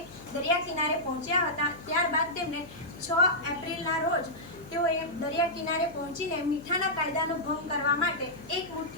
દરિયા કિનારે પહોંચ્યા હતા. ત્યારબાદ તેમને 6 એપ્રિલના રોજ તેઓએ દરિયા કિનારે પહોંચીને મીઠાના કાયદાનો ભંગ કરવા માટે એક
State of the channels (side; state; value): left; noise; hum, 19 dB below the sound